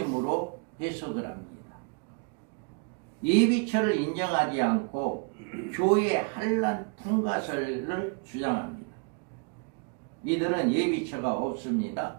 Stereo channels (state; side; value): quieter; left; 37.1 dB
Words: 해석을 합니다. 예비처를 인정하지 않고 교회 환란 통과설을 주장합니다. 이들은 예비처가